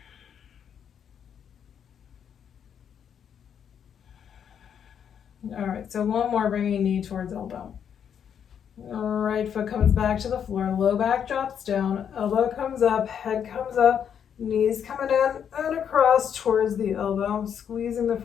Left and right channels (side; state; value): right; quieter; 8.2 dB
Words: All right, so one more, bringing knee towards elbow. Right foot comes back to the floor, low back drops down, elbow comes up, head comes up. Knees coming in and across towards the elbow, squeezing the